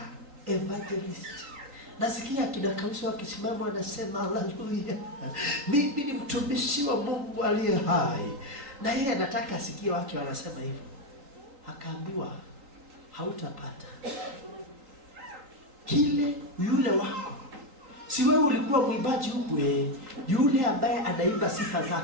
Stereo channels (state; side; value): late; left; 3.8 ms